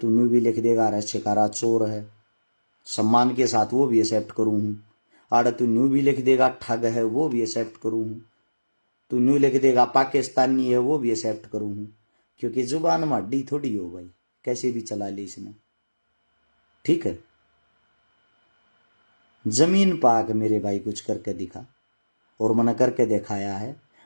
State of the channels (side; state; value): both; inverted; correlation -1.00